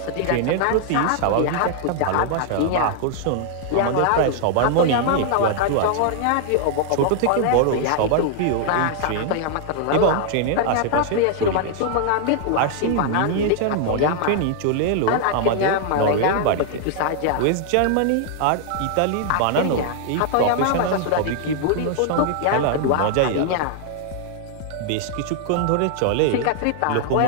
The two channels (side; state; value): both; different; correlation 0.00